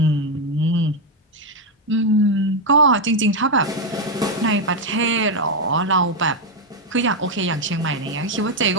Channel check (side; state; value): both; normal; correlation 0.03